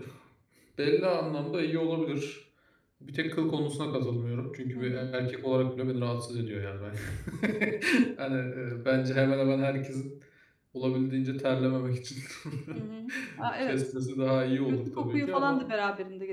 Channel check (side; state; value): both; identical; correlation 1.00